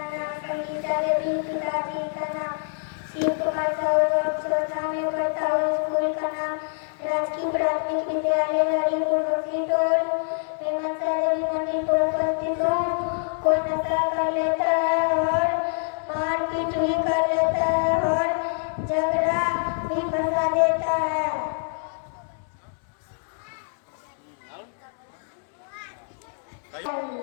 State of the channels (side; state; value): right; silent; digital silence